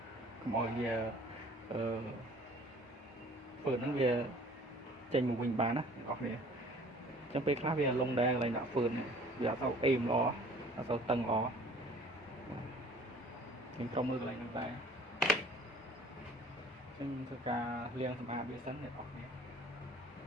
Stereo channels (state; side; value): normal; both; correlation 0.51